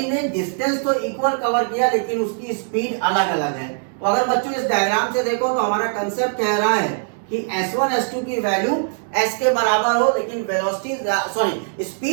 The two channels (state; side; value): silent; left; digital silence